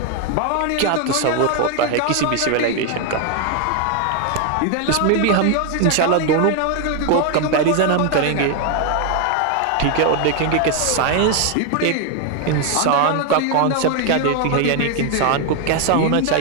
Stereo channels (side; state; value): both; different; correlation 0.01